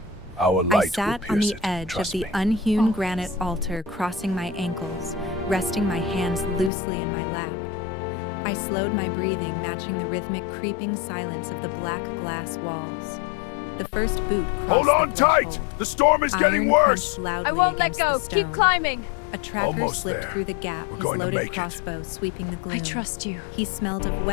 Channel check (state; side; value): drops out; right; at 6.7 s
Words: Our I light sat will on pierce the it. edge of Trust the me. unhewn Always. granite altar, crossing my ankles, resting my hands loosely in my lap. I slowed my breathing, matching the rhythmic creeping silence of the black glass walls. The first boot crossed Hold on the tight! threshold. The storm is getting Iron worse! crunched loudly I won't let against go. the stone. Keep climbing. A tracker Almost slipped there. through the gap, We're his going to loaded make it. crossbow sweeping the gloom. I trust you. He smelled of